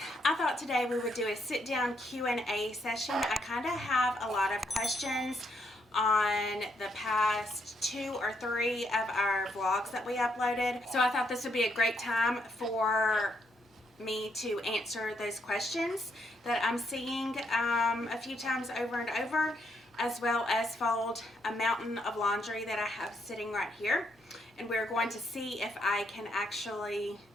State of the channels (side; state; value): both; normal; correlation 0.75